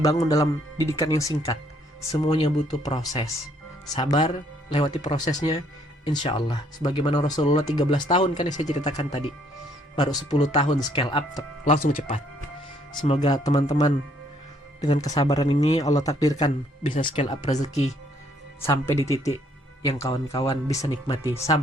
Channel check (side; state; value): both; normal; correlation 0.66